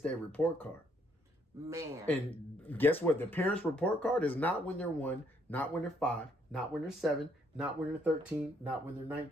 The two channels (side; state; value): both; normal; correlation 0.69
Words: report card. Man. And guess what? The parent's report card is not when they're 1, not when they're 5, not when they're 7, not when they're 13, not when they're